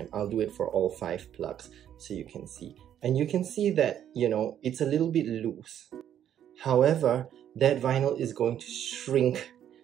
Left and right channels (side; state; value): left; quieter; 10.2 dB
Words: I'll do it for all 5 plugs so you can see. And you can see that, you know, it's a little bit loose. However, that vinyl is going to shrink